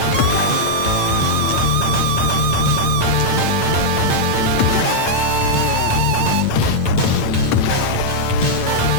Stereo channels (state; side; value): late; right; 8.9 ms